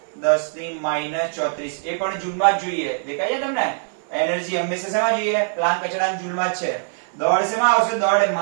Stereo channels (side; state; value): left; silent; 64 dB below the other